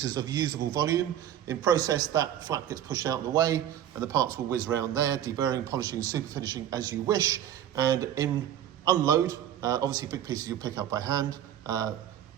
of usable volume. In process, that flap gets pushed out of the way and the parts will whiz around there, deburring, polishing, superfinishing as you wish. And in unload, obviously big pieces you'll pick up by hand,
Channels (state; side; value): quieter; left; 10.8 dB